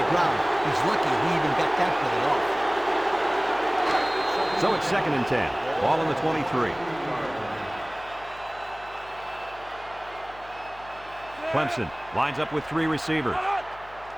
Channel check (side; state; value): left; noise; hum, 22 dB below the sound